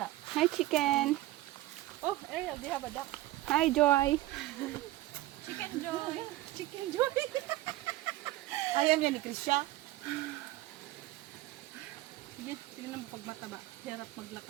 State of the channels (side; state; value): left; quieter; 16.8 dB